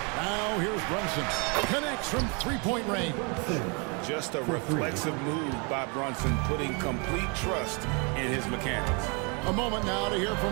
Now here's Brunson. Connects from three-point range. Just a reflexive move by Brunson, putting complete trust in his mechanics. A moment now to hear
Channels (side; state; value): left; quieter; 33.3 dB